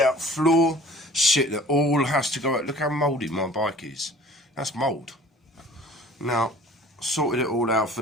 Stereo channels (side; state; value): both; normal; correlation 0.48